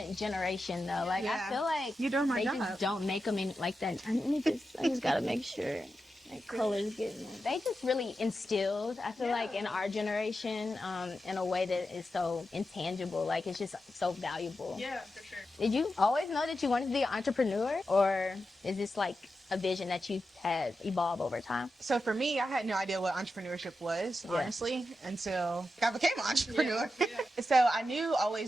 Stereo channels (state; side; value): normal; both; correlation 0.89